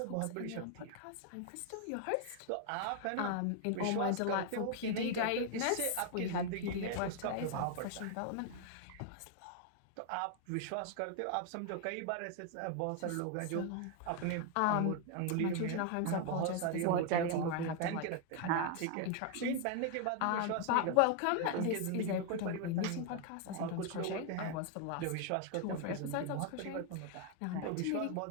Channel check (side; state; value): both; different; correlation 0.00